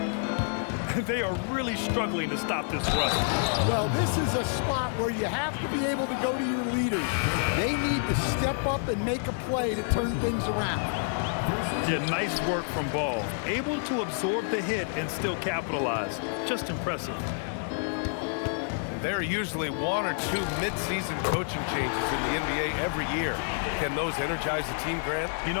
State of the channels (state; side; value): silent; right; 59 dB below the other